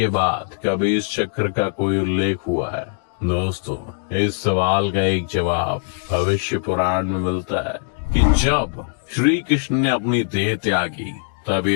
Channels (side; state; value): right; silent; digital silence